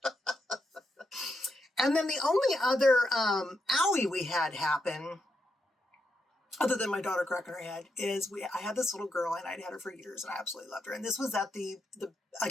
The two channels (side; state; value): both; normal; correlation 0.82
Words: And then the only other owie we had happen, other than my daughter cracking her head, is I had this little girl and I'd had her for years and I absolutely loved her. And this was at the